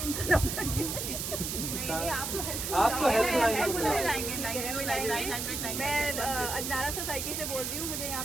इनका नंबर नहीं, आपको आपको हेल्पलाइन मैं अजनारा सोसाइटी से बोल रही हूँ। मुझे यहाँ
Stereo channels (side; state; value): right; noise; hiss, 3 dB below the sound